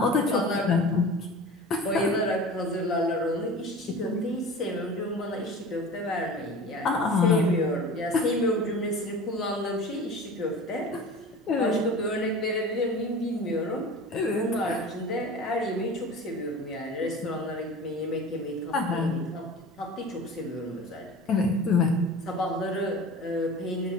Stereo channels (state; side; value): normal; both; correlation 0.37